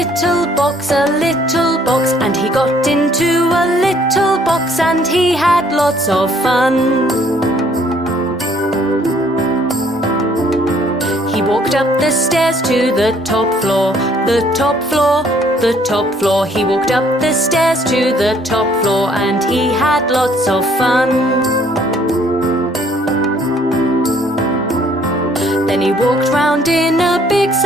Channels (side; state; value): both; normal; correlation 0.62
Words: box, a little box. And he got into a little box, and he had lots of fun. He walked up the stairs to the top floor, the top floor, the top floor. He walked up the stairs to the top floor, and he had lots of fun. Then he walked round in a big